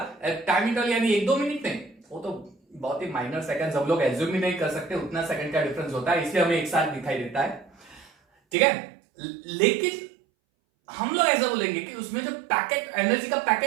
टाइम इंटरवल यानी 1-2 मिनट नहीं, वो तो बहुत ही माइनर सेकंड्स, हम लोग एज्यूम ही नहीं कर सकते उतना सेकंड का डिफरेंस होता है, इसलिए हमें एक साथ दिखाई देता है। ठीक है, लेकिन हम लोग ऐसा बोलेंगे कि उसमें जो पैकेट, एनर्जी का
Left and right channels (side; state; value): left; drops out; at 8.6 s